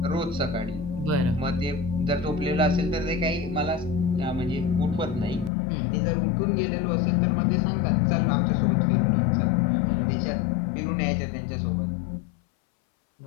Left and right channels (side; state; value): right; drops out; at 5.5 s